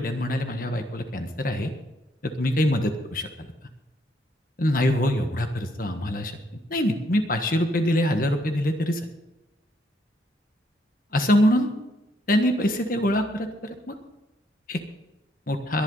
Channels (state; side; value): normal; both; correlation 0.72